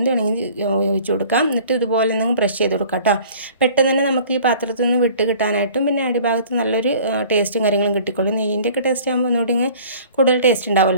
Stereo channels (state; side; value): inverted; both; correlation -0.49